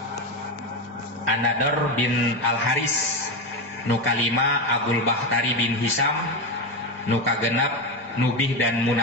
An-Nadr bin Al-Haris. Nu kalima Abul Bakhtari bin Hisam. Nu kagenep Nubih dan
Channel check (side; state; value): both; normal; correlation 0.14